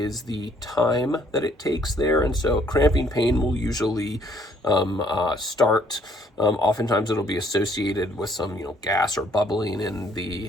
the time that it takes there. And so cramping pain will usually start. Oftentimes it'll be associated with some gas or bubbling in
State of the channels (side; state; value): both; normal; correlation 0.65